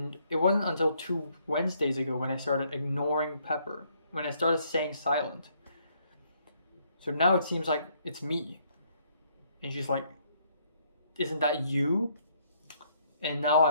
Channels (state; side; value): inverted; both; correlation -0.69